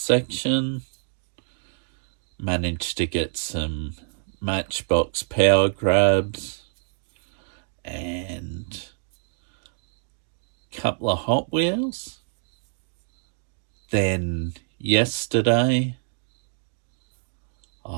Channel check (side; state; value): left; silent; digital silence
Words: Managed to get some Matchbox power grabs and a couple of Hot Wheels. Then yesterday